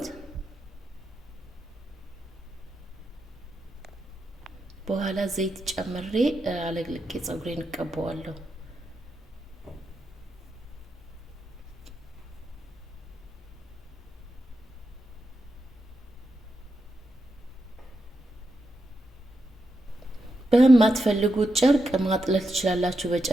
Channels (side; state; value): both; normal; correlation 0.86